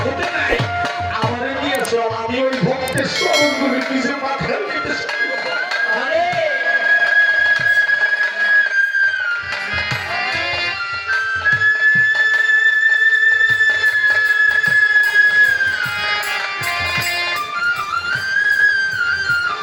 নাই। আমার দিয়েছে, আমি ওই ভক্তের চরণগুলি নিজের মাথায় নিতেছি।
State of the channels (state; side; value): identical; both; correlation 1.00